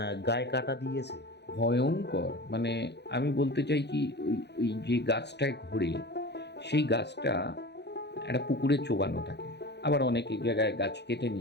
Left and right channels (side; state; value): right; late; 0.50 ms